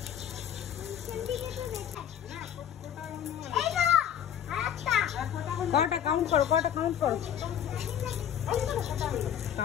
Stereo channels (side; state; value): right; quieter; 9.7 dB